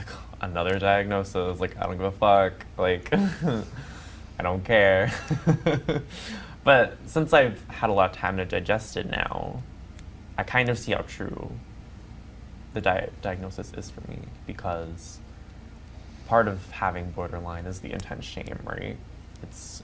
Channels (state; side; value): identical; both; correlation 1.00